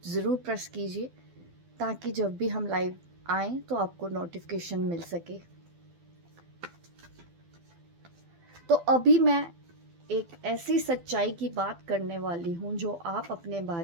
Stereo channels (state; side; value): late; left; 12 ms